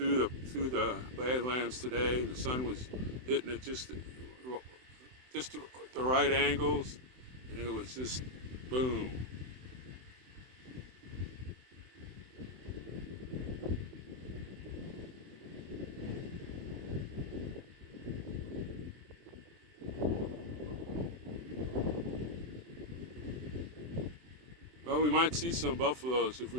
the Badlands today, the sun was hitting it just the right angles, and it was just boom. Well, we might see some buffaloes if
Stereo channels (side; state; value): left; late; 24 ms